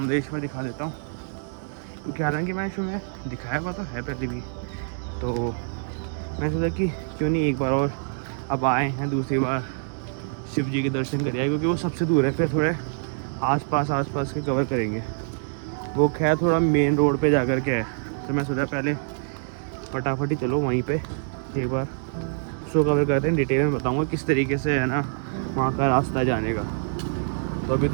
दिखा देता हूँ, क्योंकि हालांकि मैं इसमें दिखाया हुआ तो है पहले भी। तो मैं सोचा कि क्यों नहीं एक बार और अब आए हैं दूसरी बार शिव जी के दर्शन करिए, क्योंकि वो सबसे दूर है। फिर थोड़े आसपास के कवर करेंगे। वो खैर थोड़ा मेन रोड पे जा कर के है, तो मैं सोचा पहले फटाफट ही चलो वहीं पे एक बार शो कवर करते हैं। डिटेल में बताऊँगा किस तरीके से है ना वहाँ का रास्ता जाने का। तो अभी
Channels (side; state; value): left; silent; digital silence